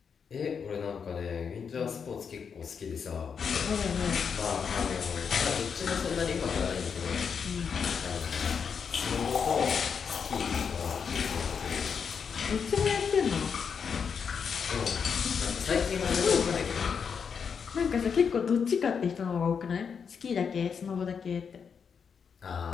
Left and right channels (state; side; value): quieter; right; 6.5 dB